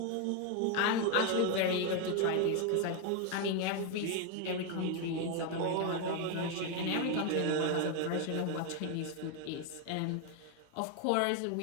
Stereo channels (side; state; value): both; different; correlation 0.01